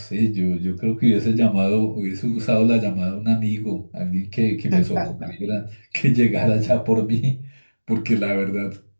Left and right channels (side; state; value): both; inverted; correlation -1.00